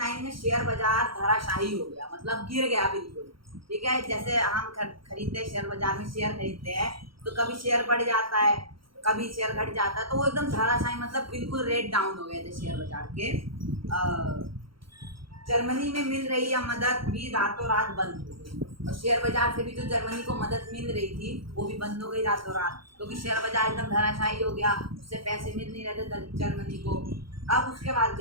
में शेयर बाजार धराशायी हो गया, मतलब गिर गया बिल्कुल, ठीक है। जैसे हम खरीदते हैं शेयर बाजार में, शेयर खरीदते हैं तो कभी शेयर बढ़ जाता है, कभी शेयर घट जाता है, तो वो एकदम धराशायी, मतलब बिल्कुल रेट डाउन हो गए थे शेयर बाजार के। जर्मनी में मिल रही यह मदद भी रातों रात बंद हो गई, और शेयर बाजार से भी जो जर्मनी को मदद मिल रही थी वो भी बंद हो गई रातों रात, क्योंकि शेयर बाजार एकदम धराशायी हो गया, उससे पैसे मिल नहीं रहे थे जर्मनी को। अब उसके बाद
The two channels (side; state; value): left; late; 0.74 ms